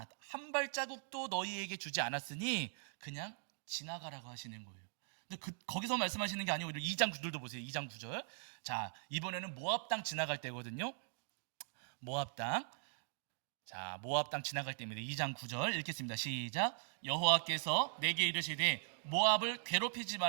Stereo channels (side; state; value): left; silent; digital silence